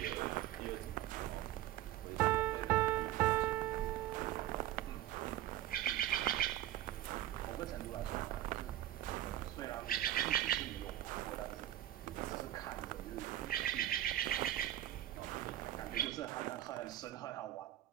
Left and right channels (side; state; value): left; quieter; 13.4 dB